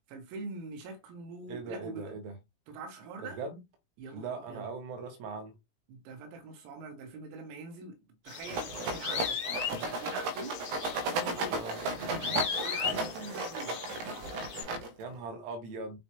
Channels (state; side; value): late; left; 18 ms